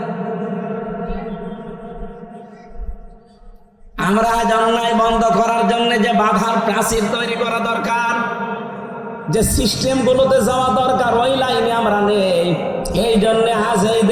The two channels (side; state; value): both; identical; correlation 1.00